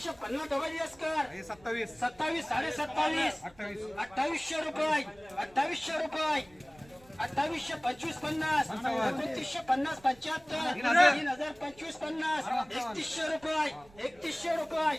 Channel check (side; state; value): right; noise; rumble, 27 dB below the sound